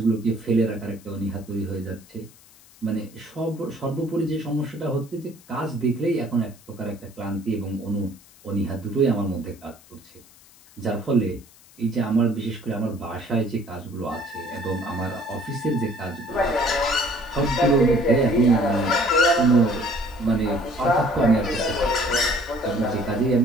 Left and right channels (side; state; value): left; noise; hiss, 25 dB below the sound